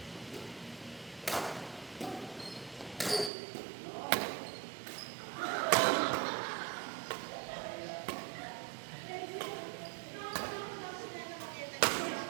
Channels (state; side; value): drops out; left; at 3.3 s